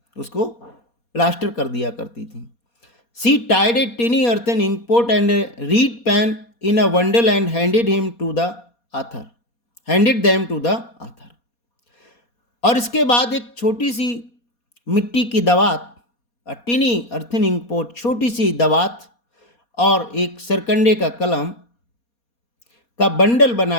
उसको प्लास्टर कर दिया करती थी। She tied a tiny earthen ink pot and a reed pen in a bundle and handed them to the author. और इसके बाद एक छोटी सी मिट्टी की दवात, टिनी अर्थन इंक पोट, छोटी सी दवात और एक सरकंडे का कलम का बंडल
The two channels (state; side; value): late; right; 4.2 ms